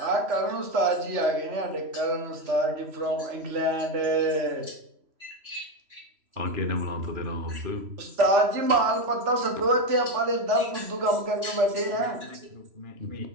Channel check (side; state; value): left; late; 3.0 ms